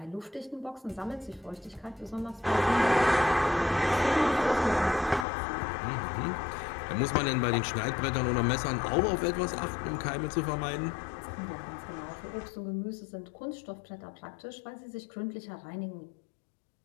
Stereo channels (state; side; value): drops out; right; at 5.2 s